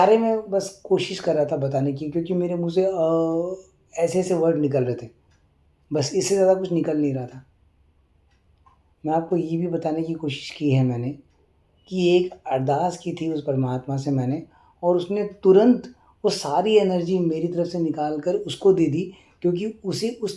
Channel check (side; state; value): both; identical; correlation 1.00